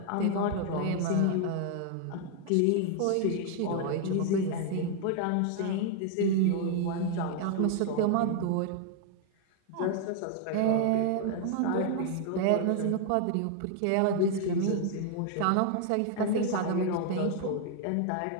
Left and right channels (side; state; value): both; different; correlation 0.00